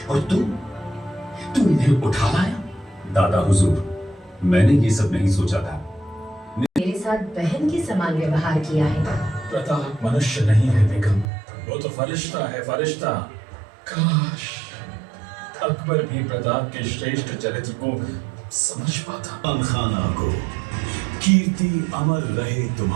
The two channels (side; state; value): left; drops out; at 11.2 s